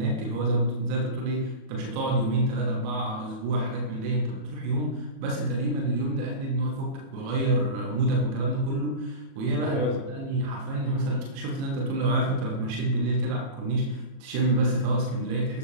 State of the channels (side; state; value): left; late; 37 ms